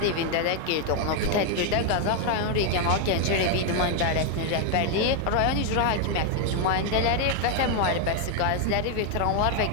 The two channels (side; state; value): both; different; correlation 0.01